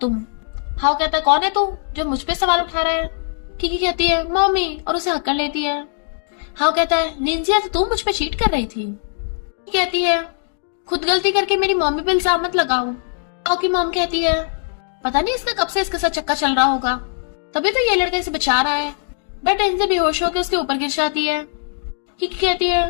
हाउ कहता है कौन है तू जो मुझ पे सवाल उठा रहा है? किकी कहती है मम्मी और उसे हक कर लेती है। हाउ कहता है लिंजिया तो तू मुझ पे चीट कर रही थी। कहती है खुद गलती करके मेरी मम्मी पे इल्जाम मत लगाओ। हाउ की मॉम कहती है पता नहीं इसका कब से इसके साथ चक्कर चल रहा होगा, तभी तो ये लड़का इसे बचा रहा है। बट लिंजिया बेहोश होकर उसके ऊपर गिर जाती है। किकी कहती है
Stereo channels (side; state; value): right; silent; digital silence